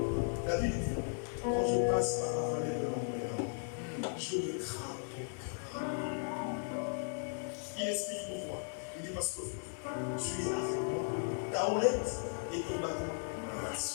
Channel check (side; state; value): right; silent; digital silence